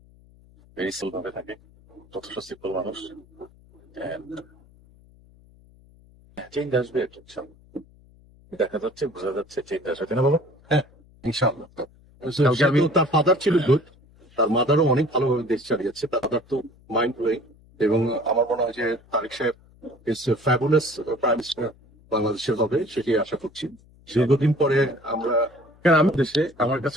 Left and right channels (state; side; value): noise; left; hum, 27 dB below the sound